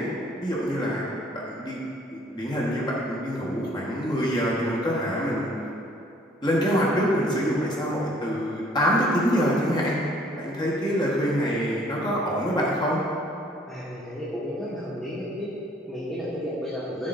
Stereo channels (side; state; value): both; normal; correlation 0.59